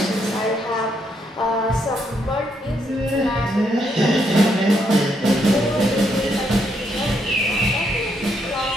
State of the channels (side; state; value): both; normal; correlation 0.75